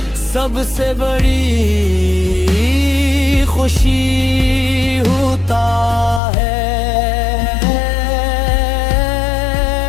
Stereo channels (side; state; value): right; drops out; at 6.2 s